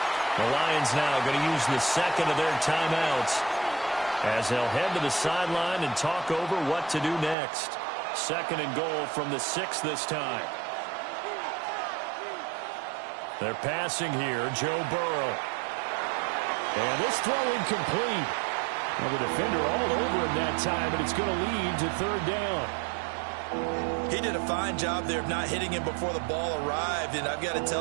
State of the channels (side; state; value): left; drops out; at 7.4 s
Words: The Lions now going to use the second of their timeouts as they'll head to the sideline and talk over what to do next. 2nd and goal from the 6 this time. They're passing here, Joe Burrow. And this throw incomplete. Well, the defender all over him that time, and it's going to lead to 3rd down. He did a fine job there of not hitting him before the ball arrived, and I've got to